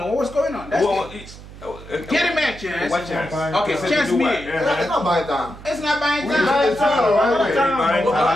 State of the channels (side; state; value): right; noise; hum, 17 dB below the sound